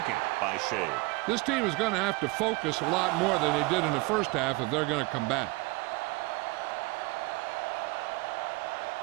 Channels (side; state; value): left; quieter; 24.8 dB